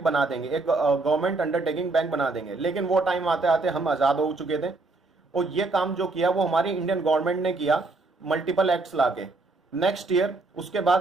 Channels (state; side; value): quieter; left; 3.4 dB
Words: बना देंगे, एक गवर्नमेंट अंडरटेकिंग बैंक बना देंगे। लेकिन वो टाइम आते आते हम आज़ाद हो चुके थे, और ये काम जो किया वो हमारी इंडियन गवर्नमेंट ने किया मल्टीपल एक्ट्स लाके। नेक्स्ट ईयर उसके